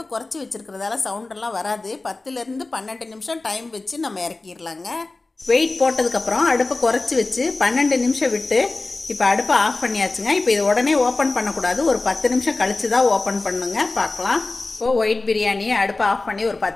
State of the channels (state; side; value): quieter; right; 3.3 dB